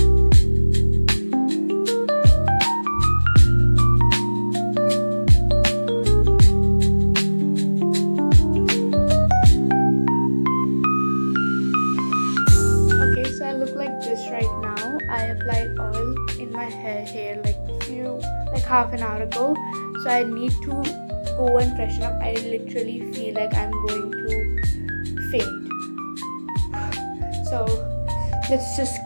Right now I applied oil in my hair like half an hour ago, so I need to go and freshen up. I literally feel like I'm going to faint. So let's just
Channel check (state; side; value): inverted; both; correlation -1.00